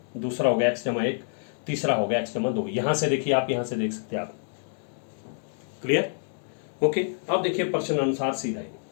दूसरा हो गया x जमा 1, तीसरा हो गया x जमा 2। यहां से देखिए आप, यहां से देख सकते हैं आप। क्लियर? ओके, अब देखिए प्रश्न अनुसार सीधा ही,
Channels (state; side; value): silent; right; digital silence